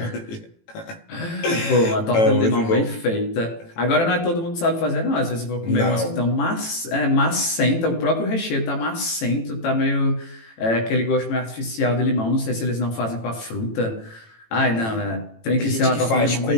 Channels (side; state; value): right; late; 18 ms